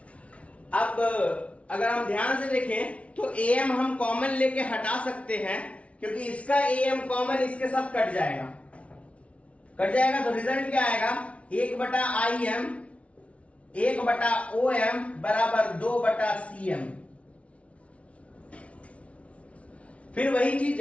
अब अगर हम ध्यान से देखें तो am हम कॉमन लेके हटा सकते हैं, क्योंकि इसका am कॉमन इसके साथ कट जाएगा, तो रिजल्ट क्या आएगा, 1/im 1/om बराबर 2/cm। फिर वही चीज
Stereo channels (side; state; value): right; late; 0.063 ms